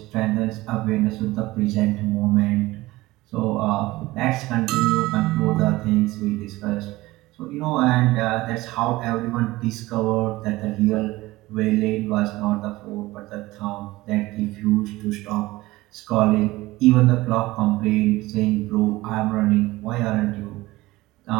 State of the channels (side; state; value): left; quieter; 19.0 dB